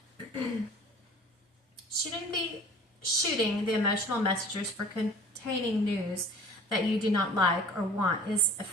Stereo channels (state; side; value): normal; both; correlation 0.46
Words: shooting the emotional messengers for containing news that you do not like or want is